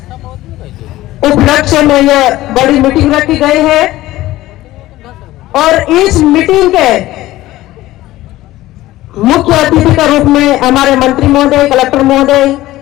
उपलक्ष्य में यह बड़ी मीटिंग रखी गई है। और इस मीटिंग के मुख्य अतिथि के रूप में हमारे मंत्री महोदय, कलेक्टर महोदय,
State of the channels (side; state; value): right; quieter; 16.4 dB